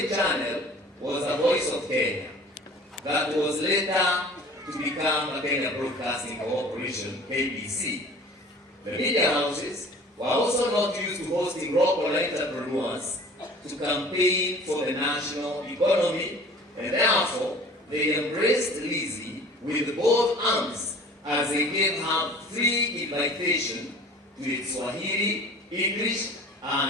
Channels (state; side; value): normal; both; correlation 0.46